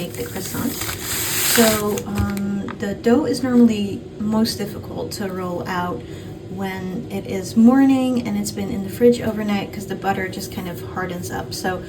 the croissant. So the dough is normally most difficult to roll out when it is morning and it's been in the fridge overnight, because the butter just kind of hardens up. So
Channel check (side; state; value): both; identical; correlation 1.00